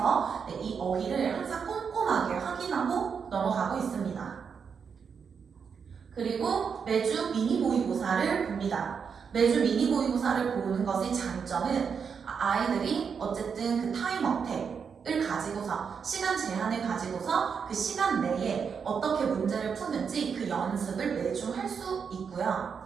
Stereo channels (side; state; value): left; quieter; 6.4 dB